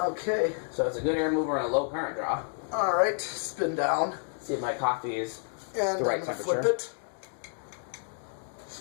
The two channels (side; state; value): right; silent; 58 dB below the other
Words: Okay. So it's a good air mover and a low current draw. All right. Spin down. See if my coffee is And the right I'm gonna temperature. flip it.